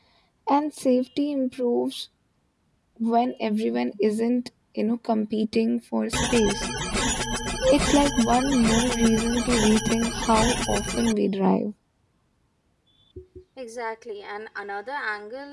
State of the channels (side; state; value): both; identical; correlation 1.00